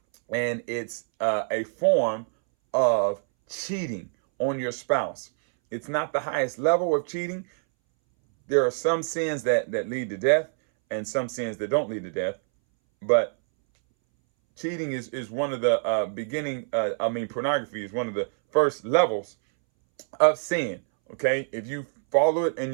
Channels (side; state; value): left; silent; 61 dB below the other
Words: And it's a form of cheating on your spouse. It's not the highest level of cheating. There are some sins that lead to death and some sins that don't lead to death. But cheating is one of the pornography is one of the first levels of sin. Okay, if you follow it and